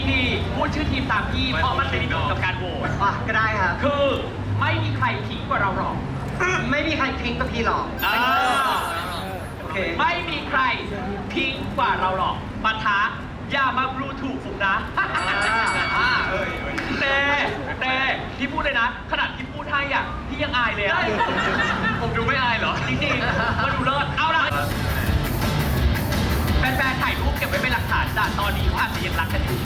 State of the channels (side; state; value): both; identical; correlation 1.00